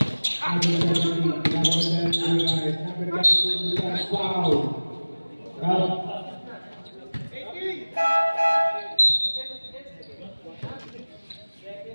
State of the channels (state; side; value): inverted; both; correlation -1.00